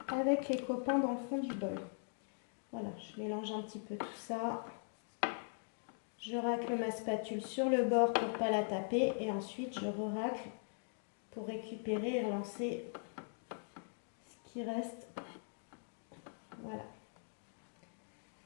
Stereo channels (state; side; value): silent; right; digital silence